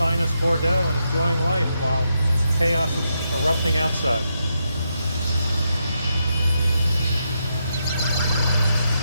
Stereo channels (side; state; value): both; inverted; correlation -0.82